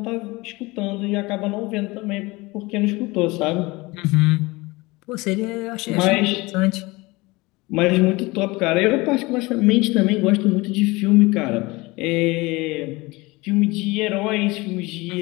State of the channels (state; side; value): quieter; right; 22.8 dB